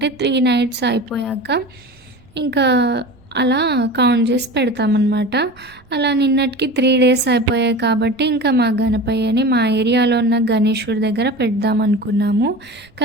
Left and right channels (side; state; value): right; noise; rumble, 29 dB below the sound